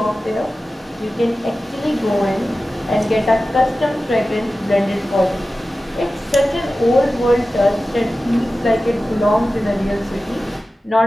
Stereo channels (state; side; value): normal; both; correlation 0.95